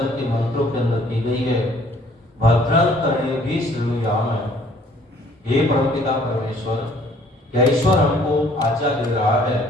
के मंत्रों के अंदर की गई है। भद्रं कर्णेभिः शृणुयाम। हे परमपिता परमेश्वर, क्या ईश्वर हमको आज्ञा दे रहा है,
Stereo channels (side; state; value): both; normal; correlation 0.58